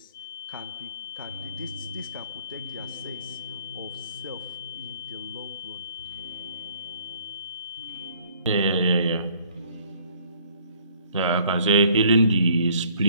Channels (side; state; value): both; inverted; correlation -0.59